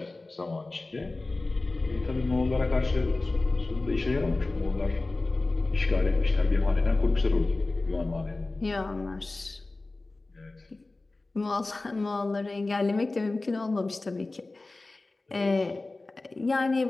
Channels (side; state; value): right; quieter; 3.2 dB